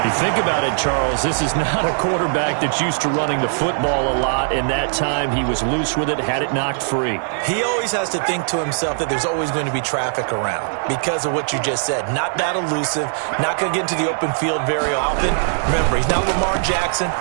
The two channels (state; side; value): silent; left; digital silence